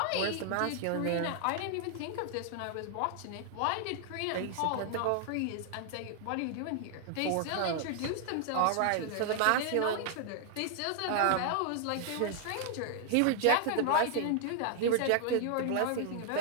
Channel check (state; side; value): different; both; correlation 0.00